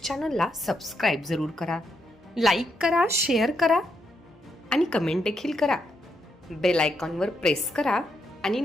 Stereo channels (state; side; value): normal; both; correlation 0.80